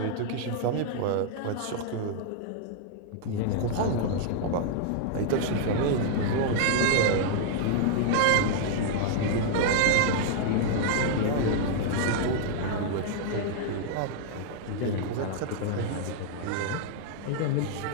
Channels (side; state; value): both; different; correlation -0.01